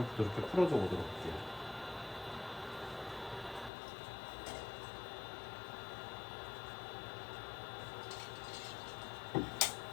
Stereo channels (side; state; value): right; drops out; at 3.7 s